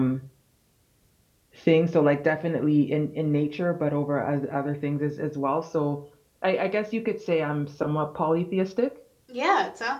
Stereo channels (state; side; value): identical; both; correlation 1.00